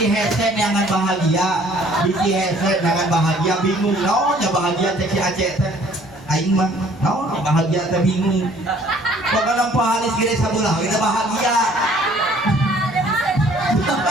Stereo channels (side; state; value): left; noise; hum, 26 dB below the sound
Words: headset jangan bahagia bingung ya bahagia teh si Aceh teh aing mah bahagia teh bingung pokoknya pahalis gede sabelah kita bahagia. Kita